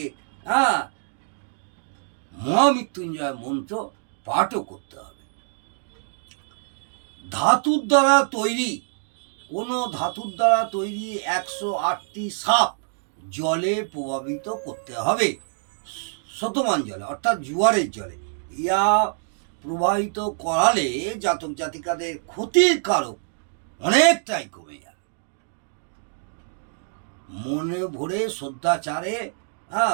মহামৃত্যুঞ্জয় মন্ত্র পাঠও করতে হবে। ধাতুর দ্বারা তৈরি, কোনো ধাতুর দ্বারা তৈরি 108টি সাপ জলে প্রভাবিত করতে হবে, শতমান জলে অর্থাৎ জোয়ারের জলে। ইয়া প্রবাহিত করালে জাতক জাতিকাদের ক্ষতির কারক অনেকটাই কমে যাবে। মনে ভরে শ্রদ্ধাচারে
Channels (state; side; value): silent; left; digital silence